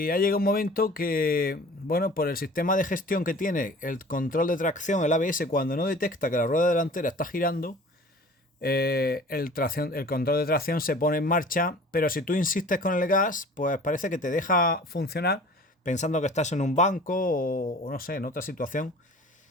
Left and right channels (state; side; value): normal; both; correlation 0.45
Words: ha llegado un momento que, bueno, por el sistema de gestión que tiene el control de tracción, el ABS, cuando no detecta que la rueda delantera está girando, el control de tracción se pone en marcha, pero si tú insistes con el gas, pues parece que te deja funcionar pensando que estás en un banco o no sé, en otra situación.